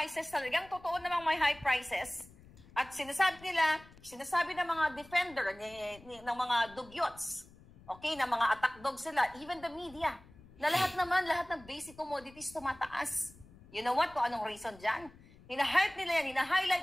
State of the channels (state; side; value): noise; left; rumble, 23 dB below the sound